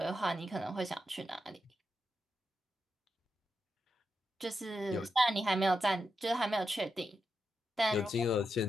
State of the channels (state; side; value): normal; both; correlation 0.86